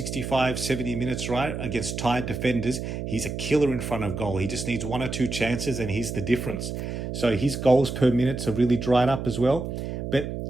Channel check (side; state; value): right; noise; hum, 5 dB below the sound